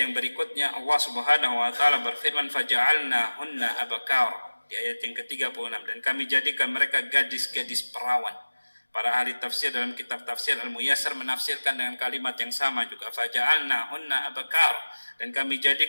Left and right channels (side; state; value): both; inverted; correlation -1.00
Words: berikutnya Allah Subhanahu wa taala berfirman, faja'alnahunna abakara, di ayat yang ke-36, dan kami jadikan mereka gadis-gadis perawan. Para ahli tafsir dalam kitab tafsir Al-Muyassar menafsirkan dengan kalimat yang sama juga, faja'alnahunna abakara, dan kami